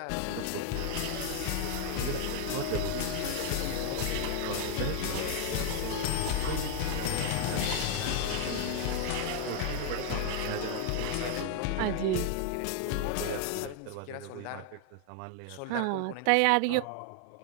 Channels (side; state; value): both; different; correlation 0.00